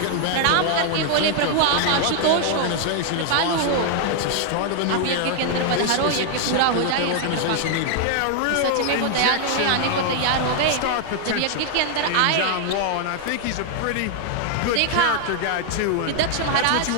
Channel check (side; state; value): both; different; correlation 0.00